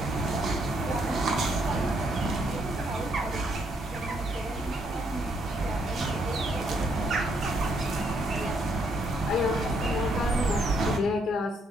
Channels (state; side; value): normal; both; correlation 0.72